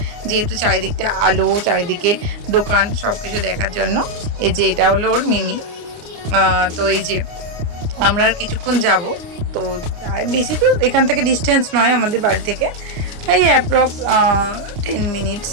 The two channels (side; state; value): left; late; 29 ms